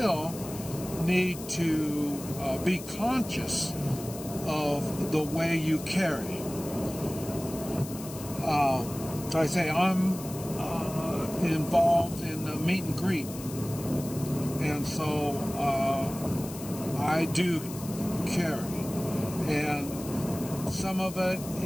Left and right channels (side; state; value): left; noise; hiss, 13 dB below the sound